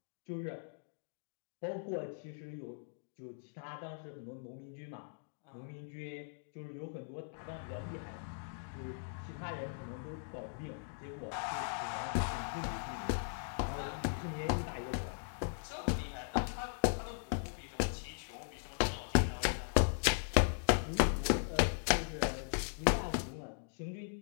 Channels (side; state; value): right; silent; digital silence